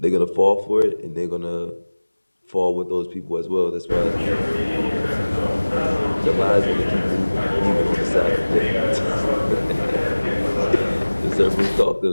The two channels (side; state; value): both; inverted; correlation -1.00